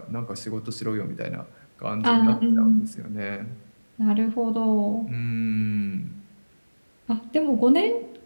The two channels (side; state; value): both; inverted; correlation -1.00